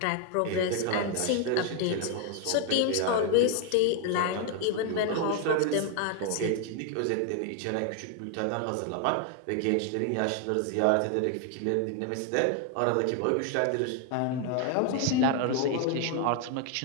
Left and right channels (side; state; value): both; different; correlation 0.01